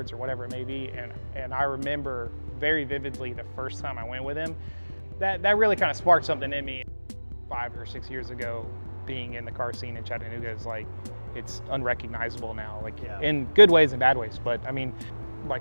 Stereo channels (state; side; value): inverted; both; correlation -1.00